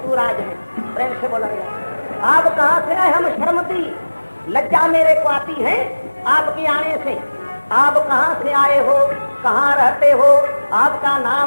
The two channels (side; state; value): both; inverted; correlation -1.00